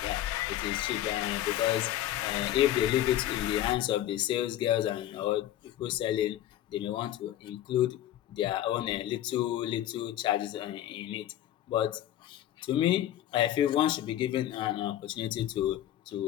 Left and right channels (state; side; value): quieter; right; 12.7 dB